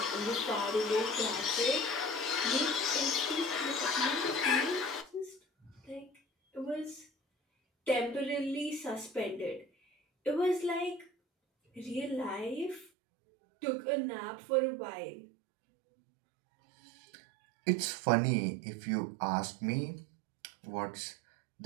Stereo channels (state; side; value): drops out; left; at 12.9 s